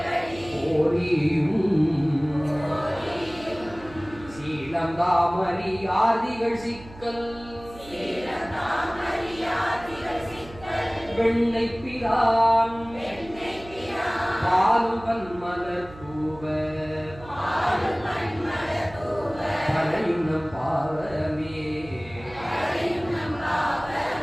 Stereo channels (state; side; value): noise; right; hum, 19 dB below the sound